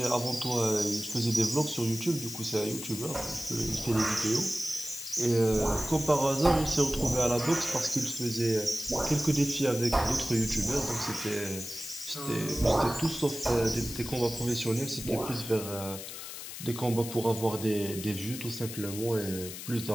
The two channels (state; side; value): noise; left; hiss, 10 dB below the sound